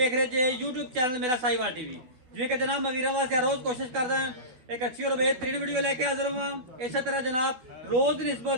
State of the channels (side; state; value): left; late; 12 ms